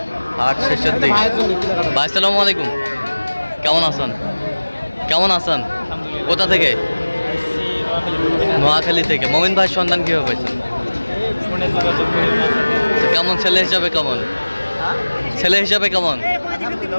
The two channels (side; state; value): both; inverted; correlation -1.00